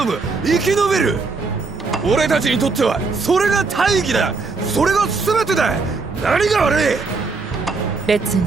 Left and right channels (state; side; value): quieter; left; 4.2 dB